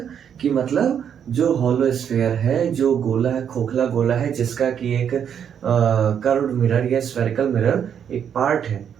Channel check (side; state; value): left; quieter; 8.3 dB